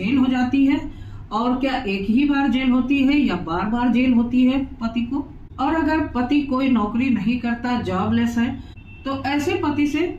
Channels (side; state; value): both; identical; correlation 1.00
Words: हो जाती है, और क्या एक ही बार जेल होती है या बार बार जेल होती है पति को। और अगर पति कोई नौकरी नहीं करता, जॉबलेस है, तो ऐसे पति से